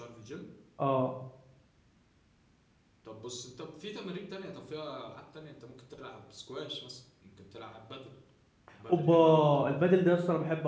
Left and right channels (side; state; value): both; identical; correlation 1.00